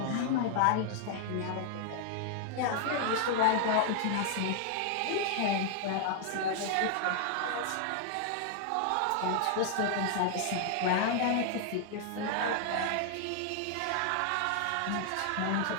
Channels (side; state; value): both; different; correlation 0.00